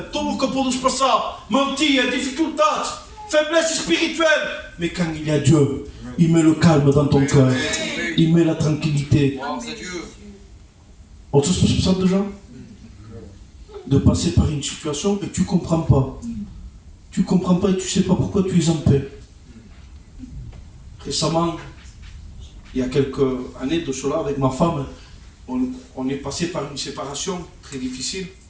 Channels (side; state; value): both; identical; correlation 1.00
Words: Tout que pour nous passer, mentir, difficultés, faiblesse spirituelle. Mais quand il y a Dieu, il met le calme dans ton cœur. Il met la tranquillité. On se passe ça déjà? De passer par une situation et tu ne comprends pas. Tu ne comprends pas et tu ne sais pas pourquoi tu es en paix. Récemment, il y a quelques années de cela, avec ma femme, on est passé par une séparation très difficile